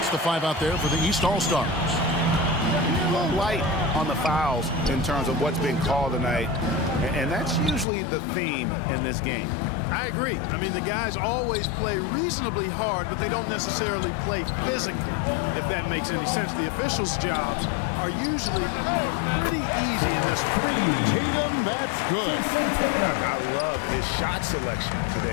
the five out there for the East All-Stars. A little light on the fouls in terms of what's been called tonight. And that's usually the theme in this game. I agree. I mean, the guys always play reasonably hard, but they don't necessarily play physically, if that makes any sense. The officials' jobs are usually pretty easy in this one. Tatum, that's good. I love his shot selection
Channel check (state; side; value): drops out; right; at 7.9 s